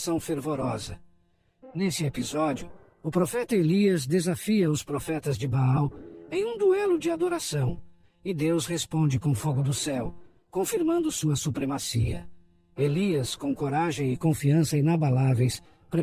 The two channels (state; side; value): identical; both; correlation 1.00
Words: fervorosa. Nesse episódio, o profeta Elias desafia os profetas de Baal em um duelo de adoração, e Deus responde com fogo do céu, confirmando sua supremacia. Elias, com coragem e confiança inabaláveis,